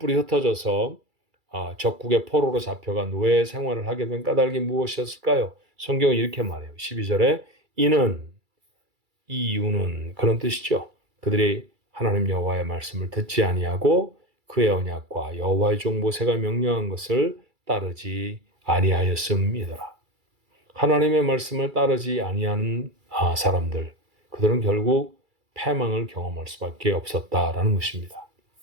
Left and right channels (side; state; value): left; late; 2.3 ms